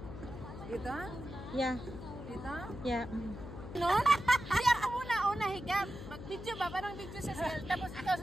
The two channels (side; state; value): left; noise; hum, 11 dB below the sound